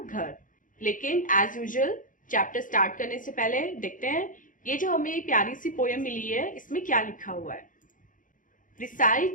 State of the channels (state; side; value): late; right; 0.38 ms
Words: लेकिन एज यूजुअल चैप्टर स्टार्ट करने से पहले देखते हैं ये जो हमें प्यारी सी पोयम मिली है इसमें क्या लिखा हुआ है।